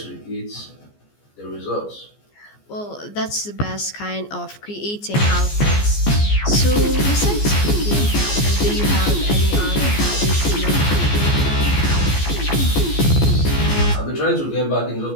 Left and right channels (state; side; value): late; right; 14 ms